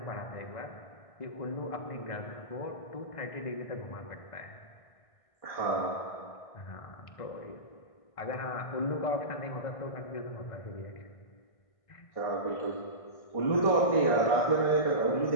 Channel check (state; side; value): late; right; 1.6 ms